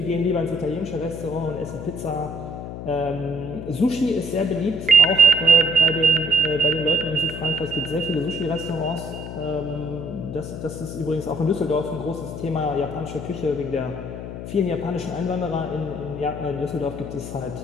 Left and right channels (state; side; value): noise; left; hum, 8 dB below the sound